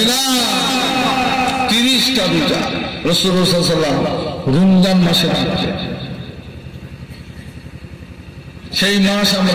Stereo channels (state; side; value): identical; both; correlation 1.00